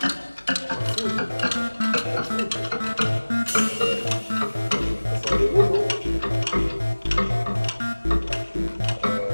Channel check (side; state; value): both; inverted; correlation -1.00